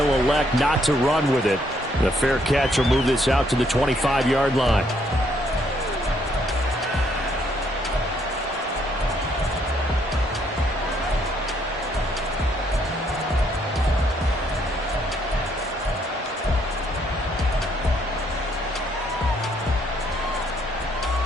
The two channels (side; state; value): both; normal; correlation 0.70